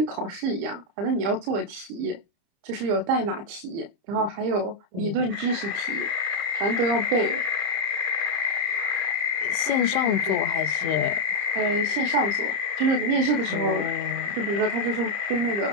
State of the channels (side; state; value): left; late; 30 ms